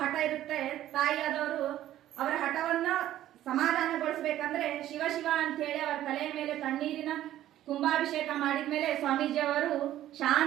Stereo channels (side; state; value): left; quieter; 13.0 dB